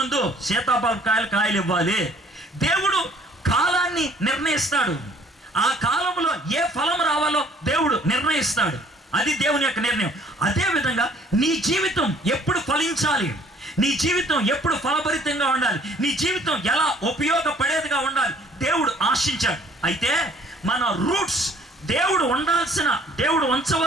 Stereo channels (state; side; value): normal; both; correlation 0.57